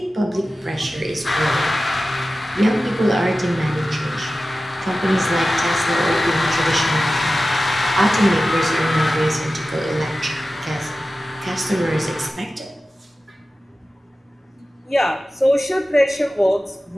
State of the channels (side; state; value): both; normal; correlation 0.95